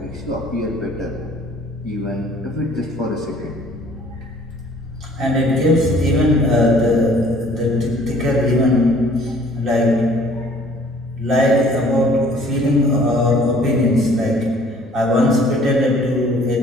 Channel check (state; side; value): normal; both; correlation 0.55